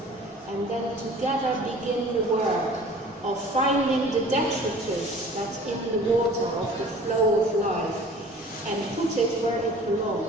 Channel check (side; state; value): both; normal; correlation 0.46